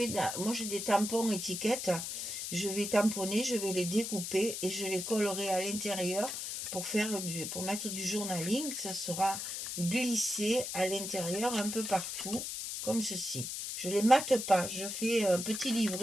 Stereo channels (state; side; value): noise; left; hiss, 5 dB below the sound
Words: moi j'ai des tampons étiquettes. Je vais tamponner, je vais les découper et je les collerai à l'intérieur pour mettre du journaling. Ça sera glissé à l'intérieur un peu partout, comme ceci. Je ne les mate pas, je fais un petit